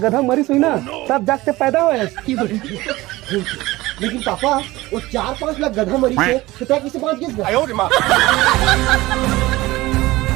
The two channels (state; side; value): quieter; left; 19.0 dB